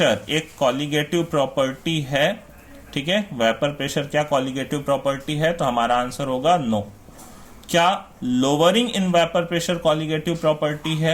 एक कॉलिगेटिव प्रॉपर्टी है, ठीक है, वेपर प्रेशर क्या कॉलिगेटिव प्रॉपर्टी है, तो हमारा आंसर होगा नो। क्या lowering in vapour pressure colligative property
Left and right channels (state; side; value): identical; both; correlation 1.00